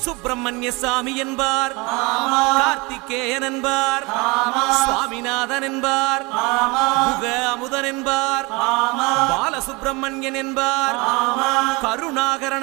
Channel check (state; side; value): quieter; left; 26.2 dB